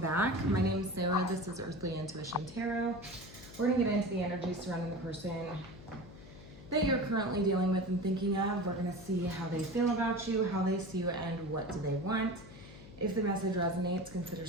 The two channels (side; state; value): left; noise; hum, 17 dB below the sound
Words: My name is Zoe, this is Earthly Intuition Tarot. We're going to get into the energy surrounding the person that you're currently dealing with and thinking of. We're going to see how they feel about you, how they see you, and what do they want. If the message resonates, consider